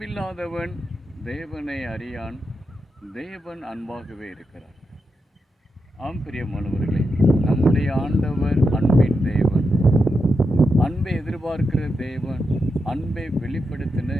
தேவனை அறியான், தேவன் அன்பாகவே இருக்கிறார். ஆம் பிரியமானவர்களே, நம்முடைய ஆண்டவர் அன்பின் தேவன், அன்பை எதிர்பார்க்கிற தேவன், அன்பை வெளிப்படுத்தின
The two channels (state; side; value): normal; both; correlation 0.86